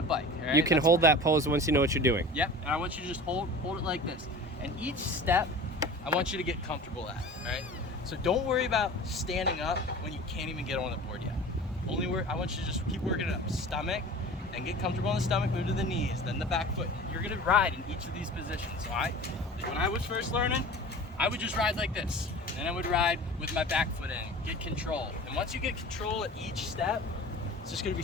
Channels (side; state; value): both; normal; correlation 0.38